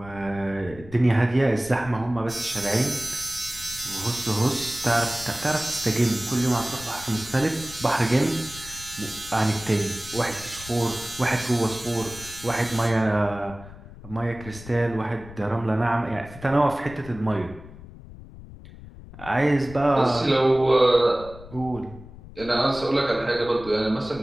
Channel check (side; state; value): left; noise; rumble, 16 dB below the sound